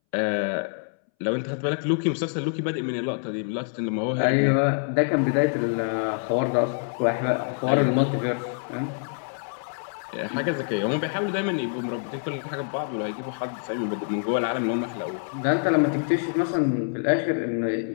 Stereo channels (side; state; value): right; silent; 61 dB below the other